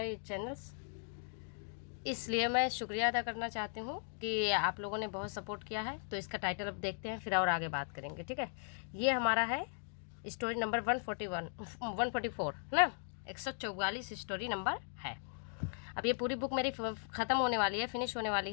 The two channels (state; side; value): silent; right; 53 dB below the other